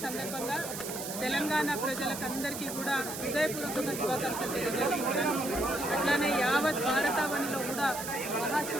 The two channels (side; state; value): right; noise; hiss, 7 dB below the sound